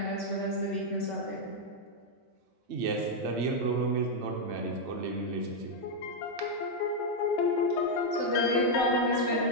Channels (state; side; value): normal; both; correlation -0.01